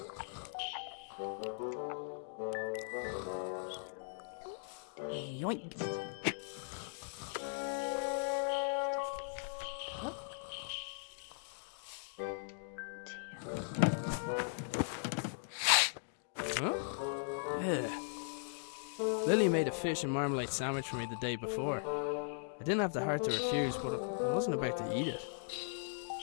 Yoink. Huh? Yeah. Lily made a fish and marmalade sandwich for me the day before. I didn't have the heart to refuse, but I wasn't about to eat it.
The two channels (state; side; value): silent; right; digital silence